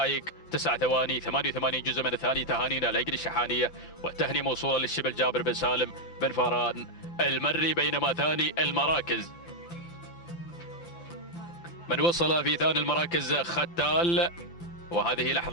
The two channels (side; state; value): right; late; 5.8 ms